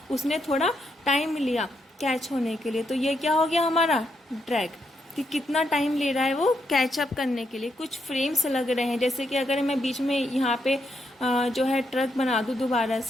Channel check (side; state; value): both; normal; correlation 0.80